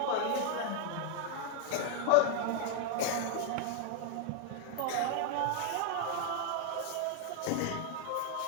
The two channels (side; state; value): both; different; correlation 0.00